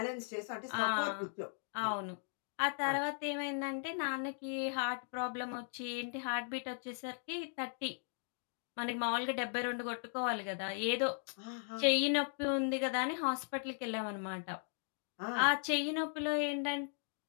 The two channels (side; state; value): right; silent; digital silence